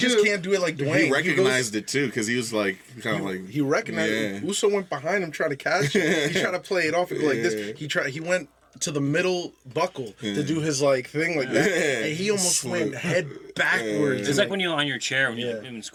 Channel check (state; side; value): identical; both; correlation 1.00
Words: scoop. can't do it like Dwayne. He recognized it too because he was like kind of like He recognized Yeah. it. Uso went behind him trying to catch it. He tried to play it off and go like Yeah. this. He went to the middle buckle to do his like thing like that. Yeah. And he almost went head backwards. It's like when you're on your chair when Yeah. you're in